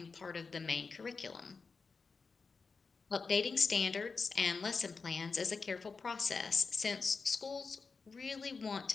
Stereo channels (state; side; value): quieter; right; 4.7 dB